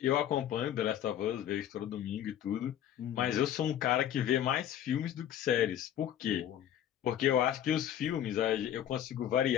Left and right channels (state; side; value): quieter; right; 10.7 dB